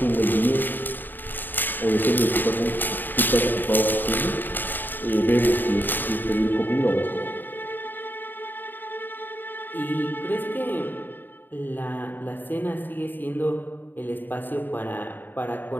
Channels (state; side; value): late; right; 0.091 ms